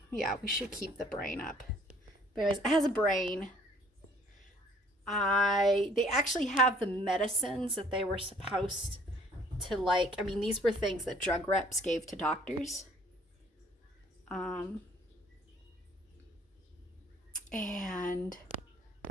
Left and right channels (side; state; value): both; normal; correlation 0.58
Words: we should keep the brain up. But anyways, it has a brain. They actually have the medicines that they were supposed to like. I mean, these were things that drug reps gave to doctors. And